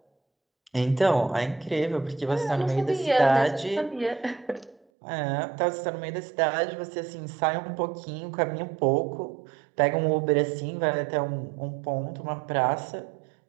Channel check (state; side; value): drops out; left; at 4.8 s